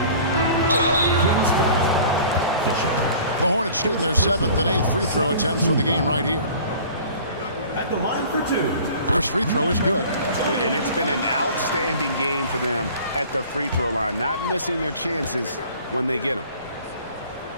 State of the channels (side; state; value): both; inverted; correlation -0.47